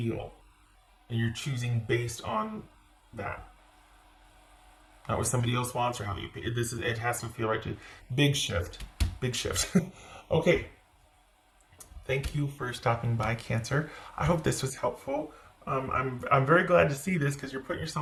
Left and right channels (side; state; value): both; identical; correlation 1.00